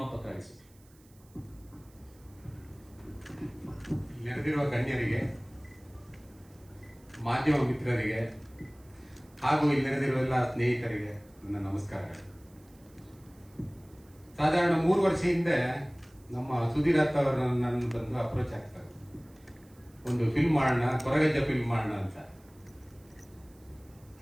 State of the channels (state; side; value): noise; right; hiss, 29 dB below the sound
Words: ನೆರೆದಿರುವ ಗಣ್ಯರಿಗೆ, ಮಾಧ್ಯಮ ಮಿತ್ರರಿಗೆ ಹಾಗೂ ಇಲ್ಲಿ ನೆರೆದಿರುವ ಎಲ್ಲ ಸ್ನೇಹಿತರಿಗೆ ನನ್ನ ನಮಸ್ಕಾರಗಳು. ಸಾಧಾರಣ 3 ವರ್ಷ ಹಿಂದೆ ನಮ್ಮ ಸುಧೀರ್ ಅತ್ತ ಅವರು ನನ್ನ ಬಂದು ಅಪ್ರೋಚ್ ಆಗ್ತಾರೆ, ಒಂದು ಫಿಲ್ಮ್ ಮಾಡೋಣ, ಕೊರಗಜ್ಜ ಫಿಲ್ಮ್ ಮಾಡೋಣ ಅಂತ.